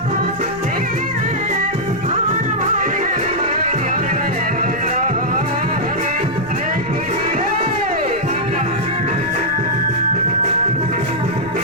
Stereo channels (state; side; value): noise; left; rumble, 18 dB below the sound